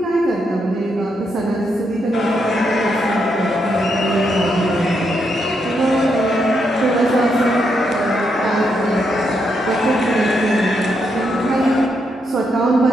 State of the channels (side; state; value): both; normal; correlation 0.80